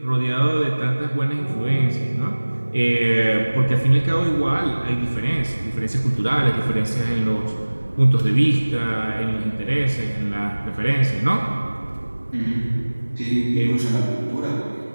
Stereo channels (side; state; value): both; inverted; correlation -1.00